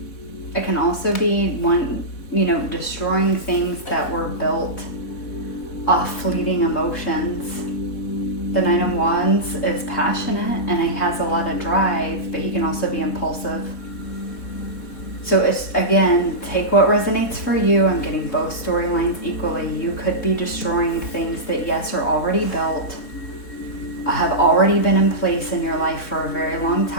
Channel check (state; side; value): late; right; 4.1 ms